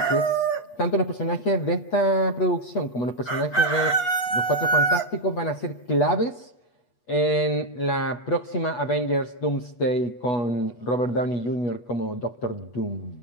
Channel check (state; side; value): late; right; 8.4 ms